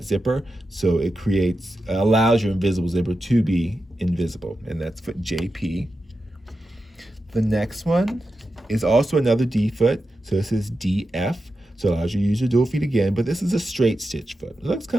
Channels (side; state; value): both; normal; correlation 0.90